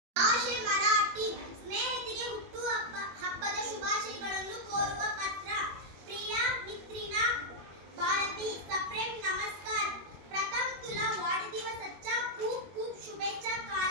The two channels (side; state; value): left; late; 21 ms